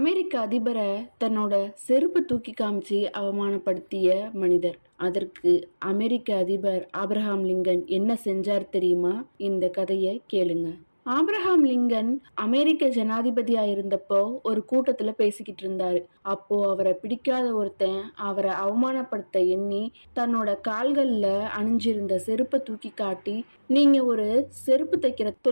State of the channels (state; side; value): inverted; both; correlation -1.00